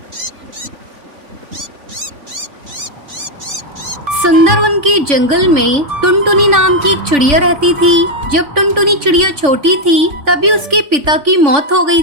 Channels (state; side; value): late; left; 3.5 ms